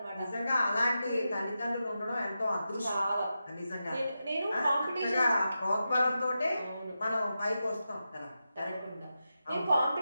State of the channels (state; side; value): inverted; both; correlation -0.90